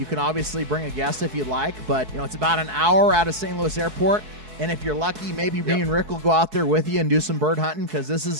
can obviously bring a guest if you'd like, but it's about an hour out of St. Louis Airport. And if you're lucky, maybe me and Rick will go out there with you and do some bird hunting because this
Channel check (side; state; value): left; late; 4.7 ms